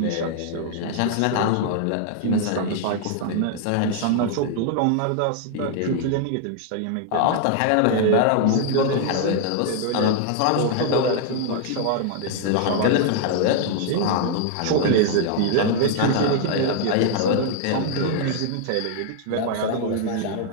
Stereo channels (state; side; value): different; both; correlation 0.00